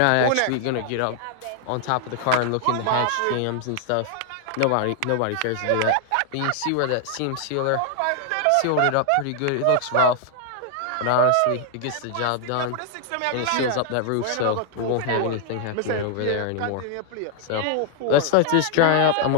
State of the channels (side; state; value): both; different; correlation 0.00